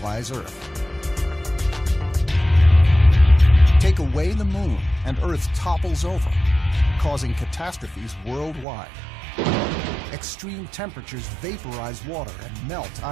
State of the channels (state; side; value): drops out; left; at 8.7 s